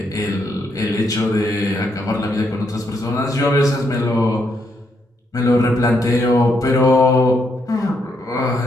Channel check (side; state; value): both; normal; correlation 0.77